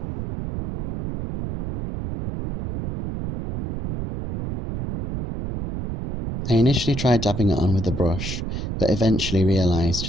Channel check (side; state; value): right; noise; rumble, 6 dB below the sound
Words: I initially tried dabbing it on with a brush, but eventually realised